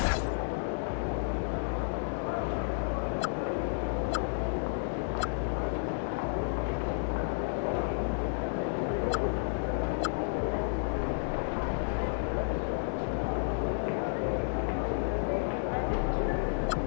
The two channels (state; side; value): silent; right; digital silence